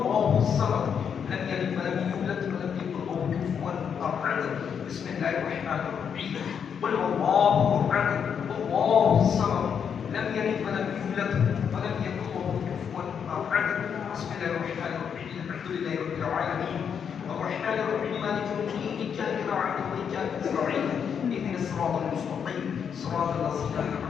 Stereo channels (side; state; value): right; quieter; 7.4 dB